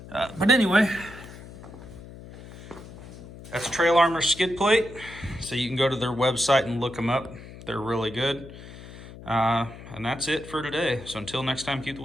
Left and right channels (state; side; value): noise; left; hum, 15 dB below the sound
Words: But anyway, that's Trail Armor skid plate. So you can go to their website and look them up. They're really good. And that's it for today. So until next time, keep the